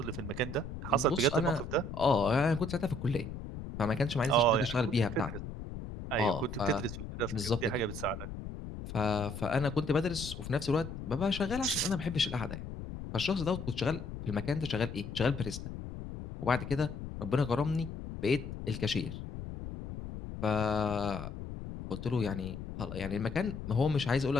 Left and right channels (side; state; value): left; noise; rumble, 9 dB below the sound